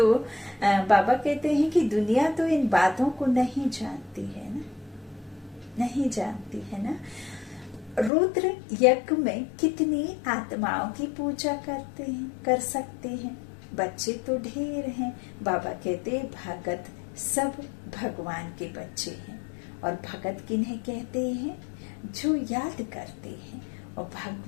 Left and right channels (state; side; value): drops out; right; at 8.1 s